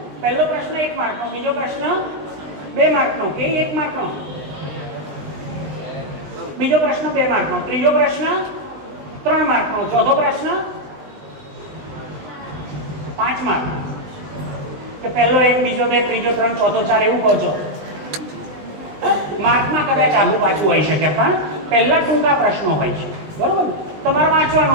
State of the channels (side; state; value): left; late; 20 ms